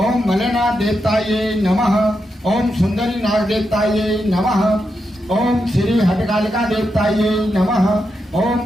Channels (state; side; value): normal; both; correlation 0.85